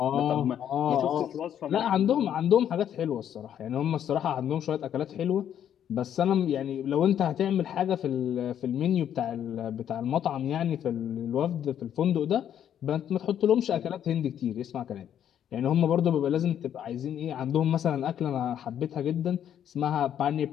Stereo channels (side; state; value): right; quieter; 9.8 dB